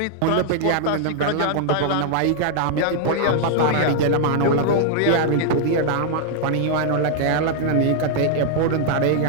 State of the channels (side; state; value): both; different; correlation 0.00